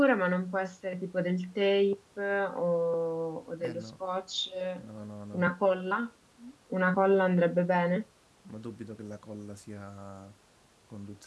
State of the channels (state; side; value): identical; both; correlation 1.00